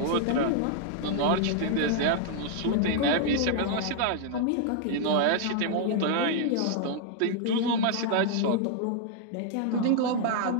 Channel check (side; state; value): both; different; correlation 0.00